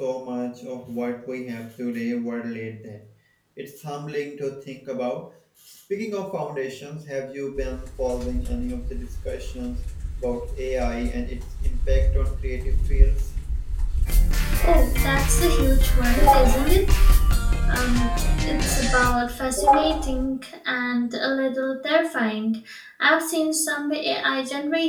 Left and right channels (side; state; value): both; identical; correlation 1.00